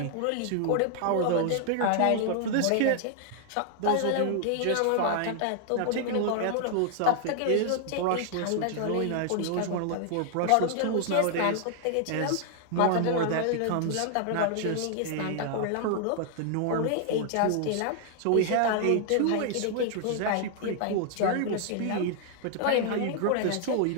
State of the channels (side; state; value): both; different; correlation 0.00